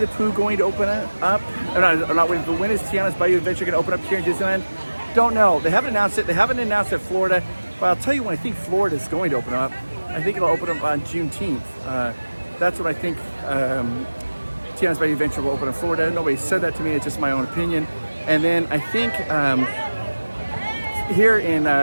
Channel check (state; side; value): inverted; both; correlation -1.00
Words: Pooh going to open up? Not Winnie the Pooh. When is Tiana's Bayou Adventure going to open up here in Disneyland? Don't know. They haven't announced it. They haven't announced it in Florida. But I'll tell you when I think Florida is going to open up. I think it'll open up on Juneteenth. That's what I think. Tiana's Bayou Adventure will open in Florida. Nobody said that to me. It's just my own opinion. And then I think here in